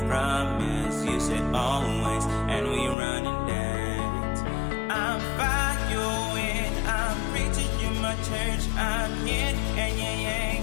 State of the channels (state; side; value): drops out; right; at 3.0 s